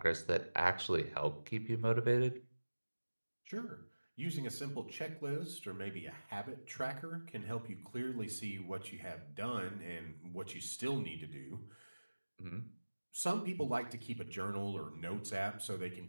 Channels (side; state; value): both; inverted; correlation -1.00